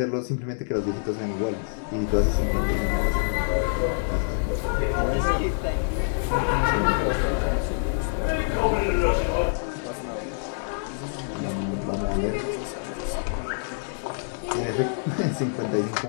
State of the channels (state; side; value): silent; right; digital silence